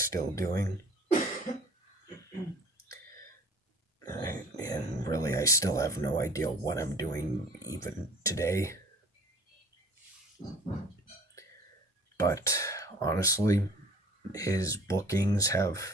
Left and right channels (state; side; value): normal; both; correlation 0.49